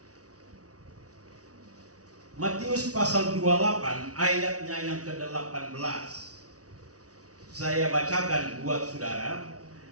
Matius pasal 28 ayatnya yang ke-18. Saya bacakan buat saudara.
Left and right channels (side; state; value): left; late; 0.67 ms